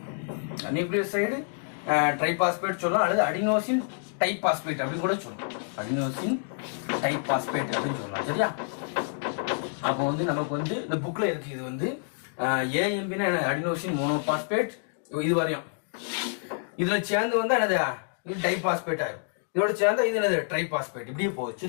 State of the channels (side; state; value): right; silent; 59 dB below the other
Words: நியூக்ளியோசைடு ட்ரைபாஸ்பேட் சொல்லலாம், அல்லது அடினோசின் டைபாஸ்பேட் அப்படின்னு கூட சொல்லலாம். அடினோசின் டைபாஸ்பேட் அப்படின்னு சொல்லலாம். சரியா? அப்போ நமக்கு இந்த புக்ல இருக்கு. இது AMPனா அடினோசின் மோனோபாஸ்பேட். இது வரையும் இதுல சேர்ந்து என்னது? இது டைபாஸ்பேட் ஆகும். இதோட சேர்ந்தா இது என்னது? ட்ரைபாஸ்பேட். இப்படியே போகுது.